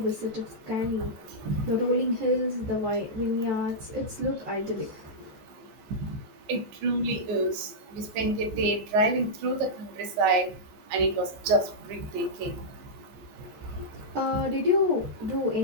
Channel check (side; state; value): left; late; 14 ms